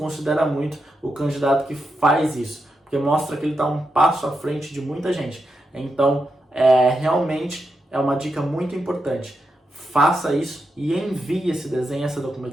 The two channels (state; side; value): normal; both; correlation 0.86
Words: muito o candidato que faz isso, porque mostra que ele está um passo à frente de muita gente. Então, realmente é uma dica muito importante. Faça isso e envie esse desenho, essa